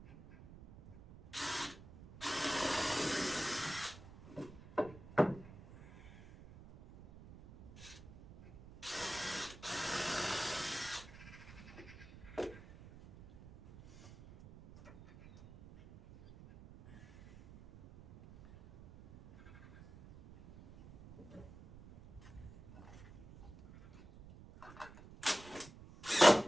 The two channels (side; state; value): right; noise; rumble, 18 dB below the sound